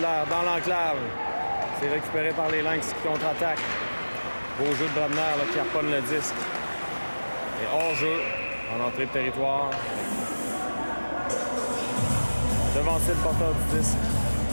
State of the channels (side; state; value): both; inverted; correlation -1.00